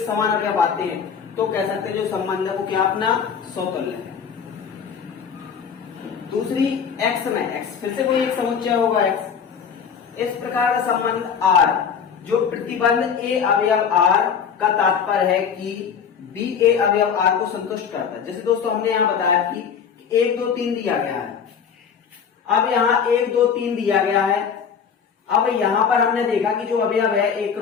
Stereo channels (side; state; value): right; quieter; 7.0 dB